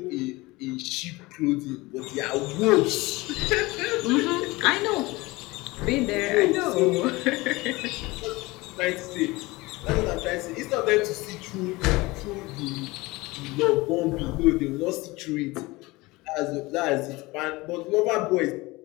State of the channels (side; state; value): right; quieter; 21.8 dB